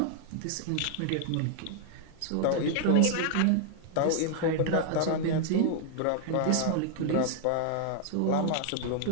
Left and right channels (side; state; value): both; different; correlation 0.00